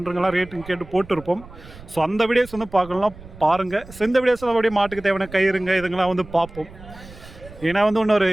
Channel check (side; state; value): right; noise; rumble, 18 dB below the sound